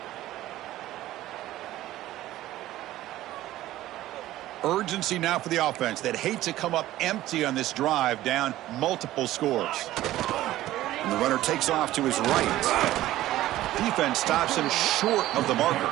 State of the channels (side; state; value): left; quieter; 15.0 dB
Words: Urgency now for the offense. They'd hate to come up empty on this drive, down multiple scores. And the runner takes off to his right. Defense stops him short of the